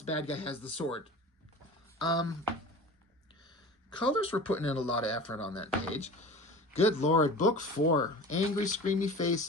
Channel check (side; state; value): both; normal; correlation 0.37